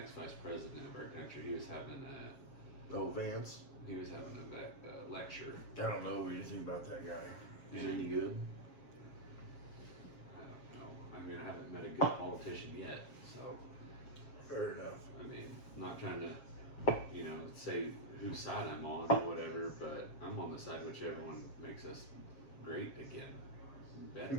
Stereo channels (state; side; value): late; right; 7.4 ms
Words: vice president of our country. He was having Oh, Vance. a lecture. I don't know anything about that guy. Is he And any good? I don't know. I mean, I haven't met a good politician yet, so. Fair enough. I mean, I'm not trying to, say whose side I'm on or whatever, but I'm on the side whichever one makes us great again,